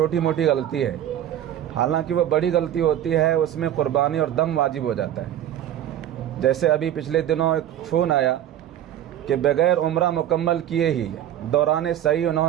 موٹی غلطی ہے، حالانکہ وہ بڑی غلطی ہوتی ہے، اس میں قربانی اور دم واجب ہو جاتا ہے۔ جیسے ابھی پچھلے دنوں ایک فون آیا کہ بغیر عمرہ مکمل کیے ہی دوران سعی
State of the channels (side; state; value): left; quieter; 11.3 dB